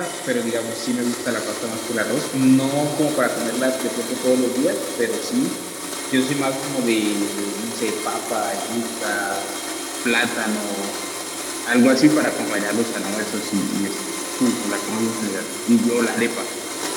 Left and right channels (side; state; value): both; identical; correlation 1.00